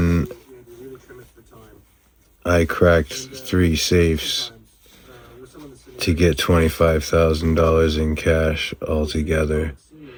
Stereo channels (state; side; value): identical; both; correlation 1.00